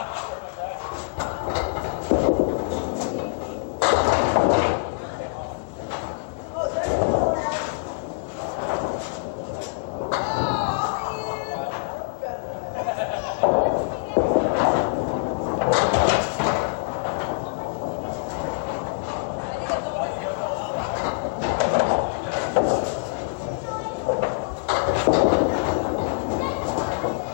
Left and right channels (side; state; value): right; silent; 62 dB below the other